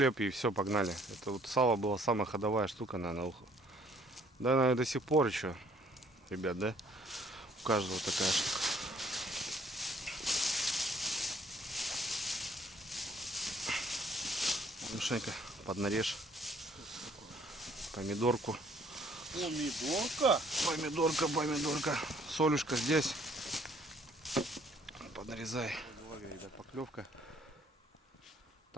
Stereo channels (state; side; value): normal; both; correlation 0.62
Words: и все, погнали. Это вот сало была самая ходовая штука, наверное. Да, наверное, до сих пор еще, ребят, да? У каждого такая штука. Мишенька, поднарежь. Помидорку. Помидорка. Солюшка здесь. Подрезай. Ребят, поклевка.